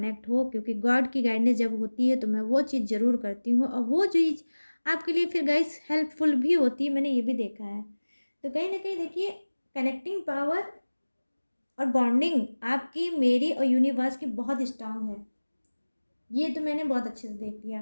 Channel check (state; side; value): inverted; both; correlation -1.00